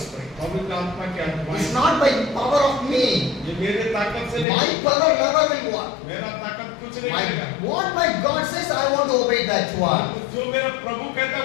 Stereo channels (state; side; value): drops out; right; at 4.5 s